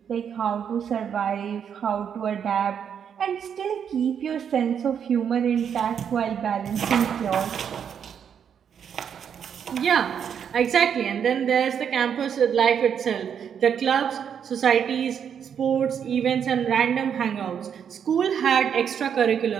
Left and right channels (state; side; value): quieter; left; 7.9 dB